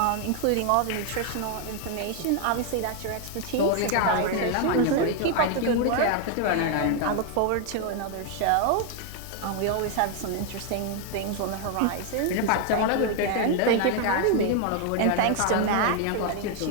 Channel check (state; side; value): different; both; correlation 0.00